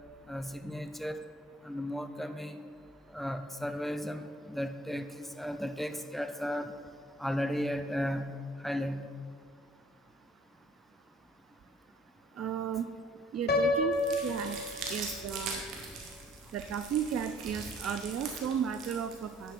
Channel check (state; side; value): normal; both; correlation 0.58